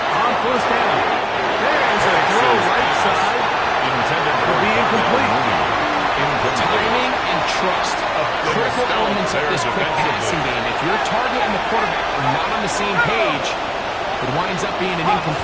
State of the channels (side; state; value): both; identical; correlation 1.00